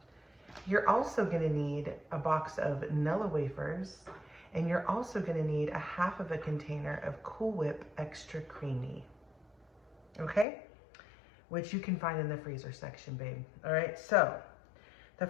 You're also gonna need a box of nilla wafers, and you're also gonna need a half of a container of Cool Whip Extra Creamy, okay? Which you can find in the freezer section, babe. All right, so the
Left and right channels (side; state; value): right; drops out; at 10.5 s